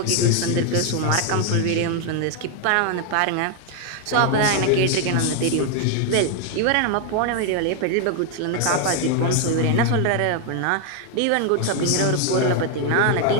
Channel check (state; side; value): different; both; correlation 0.01